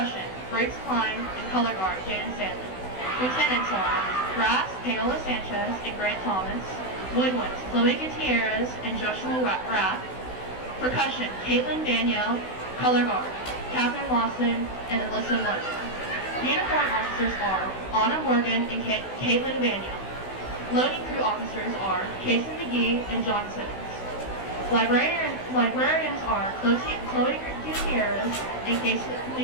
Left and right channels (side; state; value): right; late; 16 ms